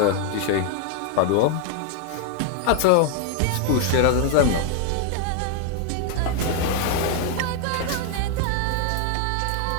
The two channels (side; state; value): both; different; correlation 0.00